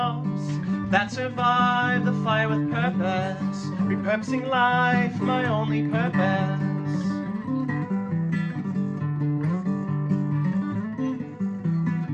that survive the fire with purpose, repurposing life, my only purpose.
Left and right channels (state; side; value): identical; both; correlation 1.00